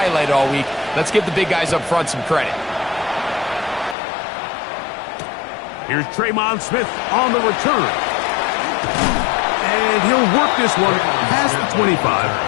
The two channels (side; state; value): right; drops out; at 4.0 s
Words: all week. Let's give the big guys up front some credit. Here's Tremon Smith on the return. And he'll work this one past the 25